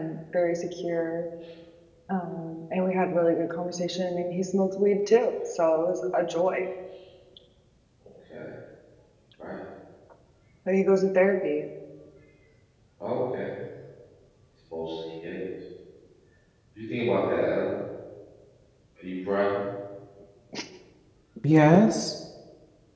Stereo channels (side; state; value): both; identical; correlation 1.00